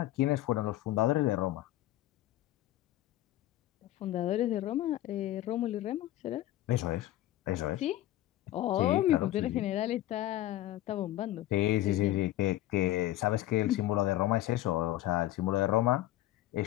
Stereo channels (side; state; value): right; quieter; 14.9 dB